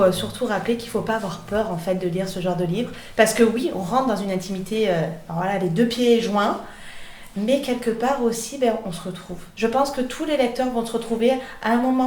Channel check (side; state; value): both; identical; correlation 1.00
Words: surtout rappeler qu'il ne faut pas avoir peur en fait de lire ce genre de livre. Parce que oui, on rentre dans une intimité, les 2 pieds joints, mais quelque part aussi, on se retrouve. Je pense que tous les lecteurs vont se retrouver à un